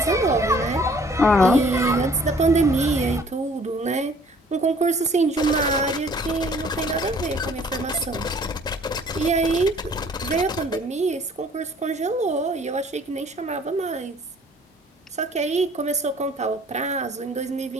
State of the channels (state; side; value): normal; both; correlation 0.56